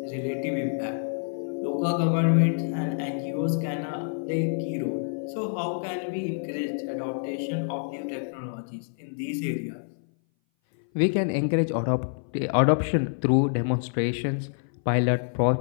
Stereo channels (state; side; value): silent; right; 58 dB below the other